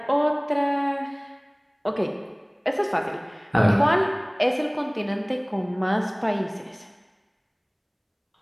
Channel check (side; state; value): both; identical; correlation 1.00